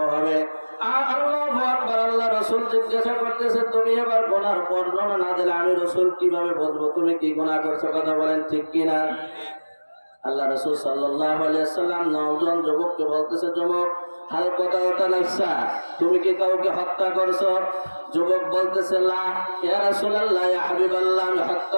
হবে। আল্লাহু আকবার। আল্লাহ রাসূল জিজ্ঞাসা করতেছে, তুমি এবার গুনাহর বর্ণনা না দিলে আমি রাসূল কিভাবে বুঝবো তুমি কি গুনাহ করছো? কথা বলেন ঠিক কিনা? আল্লাহ রাসূল সাল্লাল্লাহু আলাইহি ওয়াসাল্লাম নওজোয়ান যুবককে বলতেছে, যুবক, হাল কতাওতা নাফসা, তুমি কি কাউকে হত্যা করছো? যুবক বলতেছে, লা ইয়া রাসূলুল্লাহ, ইয়া হাবিবাল্লাহ, আমি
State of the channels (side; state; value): both; inverted; correlation -1.00